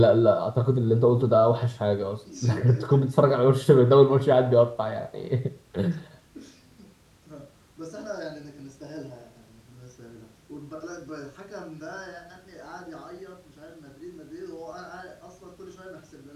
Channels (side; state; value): both; identical; correlation 1.00